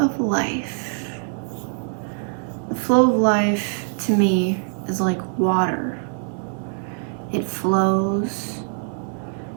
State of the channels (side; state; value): left; silent; 63 dB below the other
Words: life. The flow of life to me is like water. It flows,